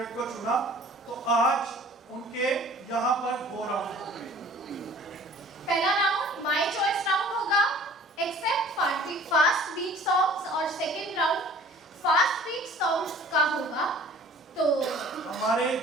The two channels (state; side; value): normal; both; correlation 0.49